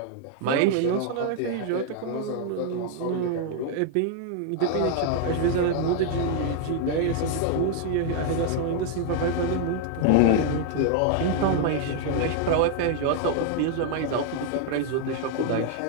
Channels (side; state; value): both; different; correlation 0.00